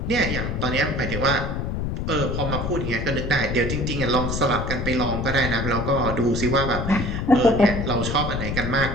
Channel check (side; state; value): left; noise; rumble, 2 dB below the sound